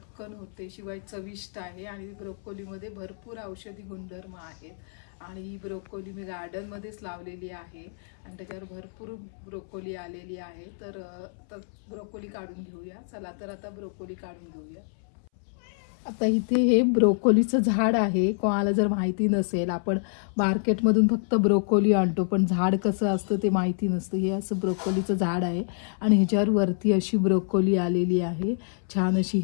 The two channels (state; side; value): silent; right; 60 dB below the other